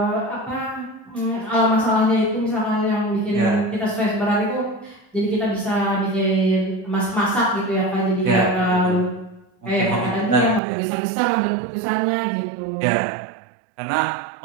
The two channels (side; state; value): left; drops out; at 10.6 s